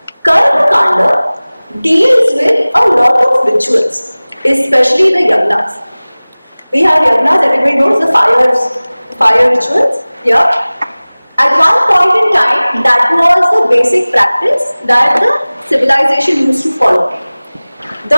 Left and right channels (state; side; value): inverted; both; correlation -0.99